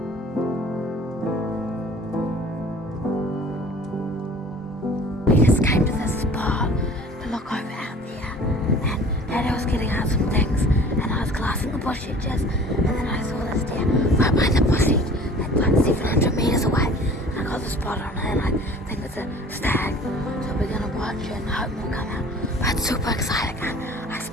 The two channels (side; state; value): both; normal; correlation 0.46